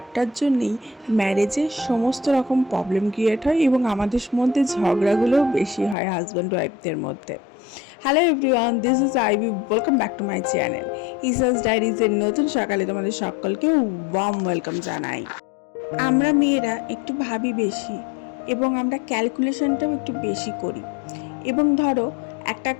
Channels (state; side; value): drops out; right; at 6.0 s